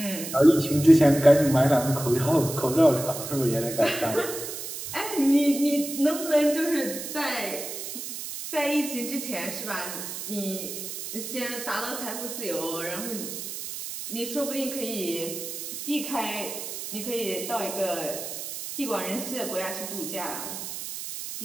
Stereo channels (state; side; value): noise; right; hiss, 7 dB below the sound